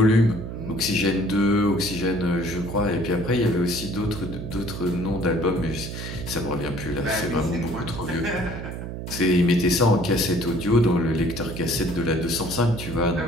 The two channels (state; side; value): noise; right; hum, 7 dB below the sound